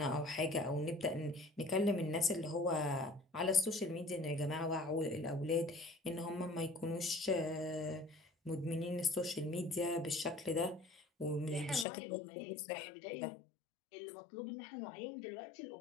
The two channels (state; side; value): drops out; right; at 11.9 s